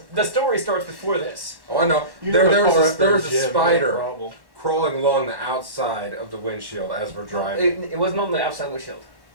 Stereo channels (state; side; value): late; left; 1.1 ms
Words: The story starts before this. Oh, I know. You There know the car was after a gym, no spider problem. crawling along the outside of the windshield as we're driving. It wasn't on the outside windshield.